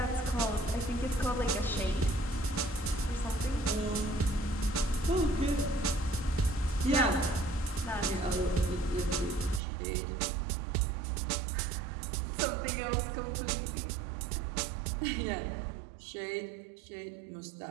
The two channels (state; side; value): drops out; left; at 9.6 s